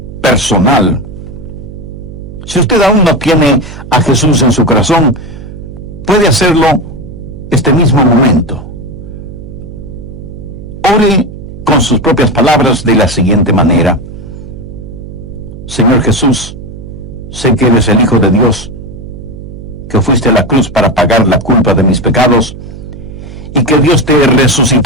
personal. Si usted aún no tiene a Jesús en su corazón, puede hacerlo este mismo momento. Ore con sus propias palabras de la siguiente manera. Señor Jesús, sé que eres el Hijo de Dios, que fuiste a la cruz para pagar la culpa de mis pecados, y que Dios te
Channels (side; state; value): right; noise; hum, 13 dB below the sound